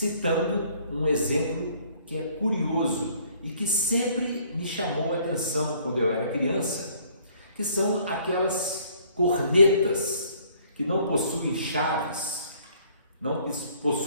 um exemplo que é curioso e que sempre me chamou a atenção quando eu era criança, que são aquelas cornetas que não possuem chaves, não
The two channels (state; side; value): inverted; both; correlation -0.60